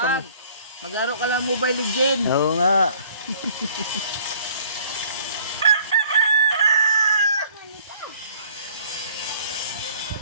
Maglaro ka lang Mobile Legends. Oo nga.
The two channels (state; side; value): inverted; both; correlation -0.55